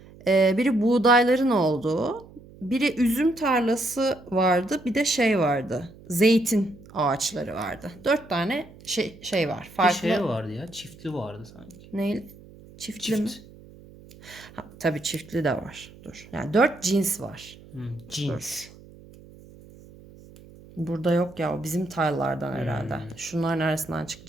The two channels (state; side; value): noise; right; hum, 21 dB below the sound